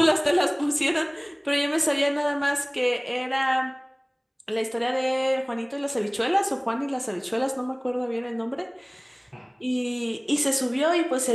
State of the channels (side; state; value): both; identical; correlation 1.00